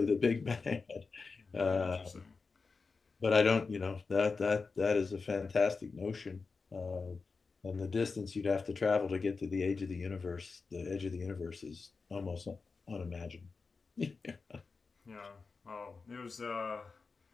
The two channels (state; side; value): quieter; right; 4.5 dB